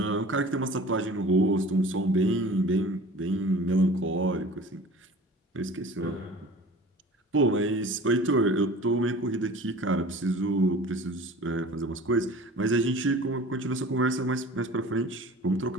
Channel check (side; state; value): both; normal; correlation 0.43